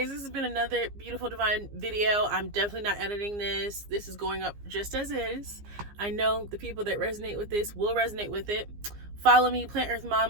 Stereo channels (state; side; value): late; left; 15 ms